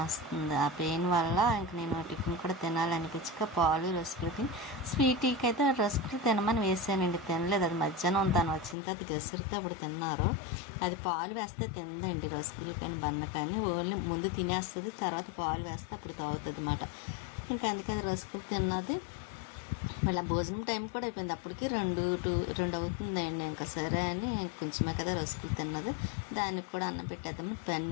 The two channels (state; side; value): drops out; right; at 8.8 s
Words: వస్తుంది. ఆ పెయిన్ వల్ల ఇంక నేను టిఫిన్ కూడా తినాలనిపించక పాలు రస్కులు తిని, స్వీటీకి అయితే రస్కులు తినమని వేసానండి, తినలేదు. అది మధ్యాహ్నం తను వచ్చిన తర్వాత గసరితో అప్పుడు తిన్నారు. అది పాలు వేస్తే తిందండి, రస్కులు కానీ బన్న కానీ ఓన్లీ ముందు తినేస్తుంది, తర్వాత పాలు వేస్తే అప్పుడు తాగుతుంది అన్నమాట. ఇంకా అందుకే అది రస్కులు తిన్నది. మళ్ళీ భోజనం టైం కూడా అయిపోయింది, అప్పటికి 2 అవుతుందండి. ఇంకా సరే అని కొంచెమే కదా రసుకులు తిన్నది, దానికి కూడా అన్నం పెట్టేద్దామని